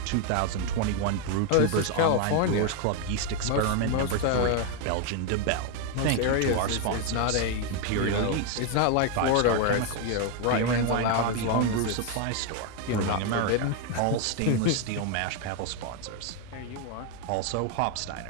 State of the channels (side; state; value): both; different; correlation 0.01